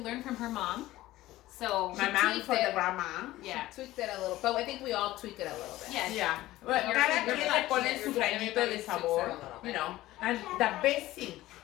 from her mom. So My mom tweaked for it. the grandma. yeah. Tweaked it a little, but I think we all tweak it a little bit. Yes. Yeah. Well, Your- cada your quien touch, le pone yeah, su your- granito de everybody sabor, tweaks it a little you bit. know. And the best thing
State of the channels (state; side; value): quieter; right; 16.4 dB